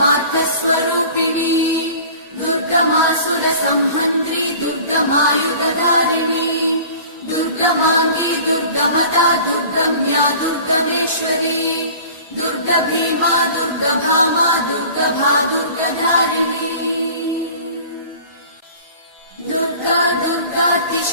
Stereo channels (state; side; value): inverted; both; correlation -0.44